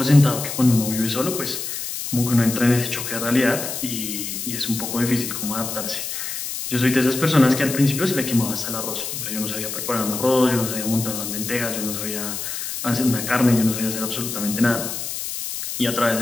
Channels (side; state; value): left; noise; hiss, 5 dB below the sound